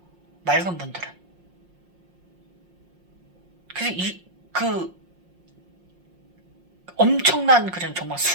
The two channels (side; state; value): left; late; 5.6 ms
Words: 맑은 분들은. 그래서 그 엄청난 그런 정말